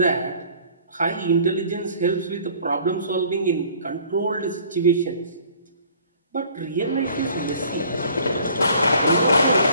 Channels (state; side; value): inverted; both; correlation -0.54